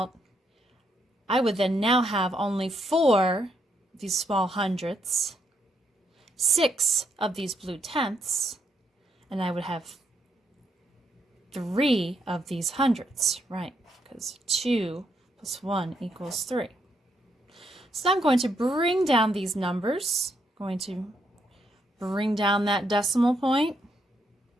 I would then now have only 4 of these small hundredths, 6 of these blue tenths, and I would have 3 of these hundredths, right? Because 2 plus 1 equals 3. So I'm going to bring down these numbers. I'm going to bring down that decimal point.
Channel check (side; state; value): both; normal; correlation 0.76